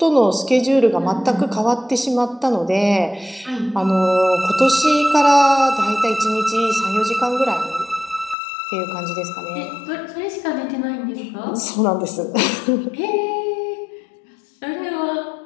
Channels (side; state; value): right; drops out; at 8.3 s